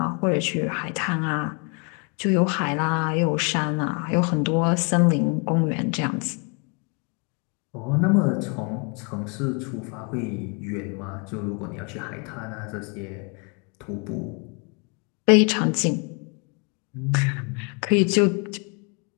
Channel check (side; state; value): right; quieter; 34.9 dB